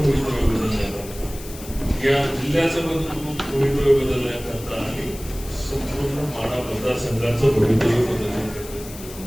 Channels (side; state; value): left; noise; hiss, 15 dB below the sound